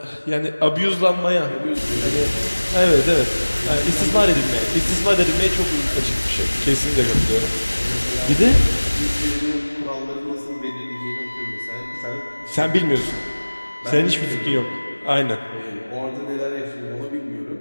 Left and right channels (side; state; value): both; inverted; correlation -1.00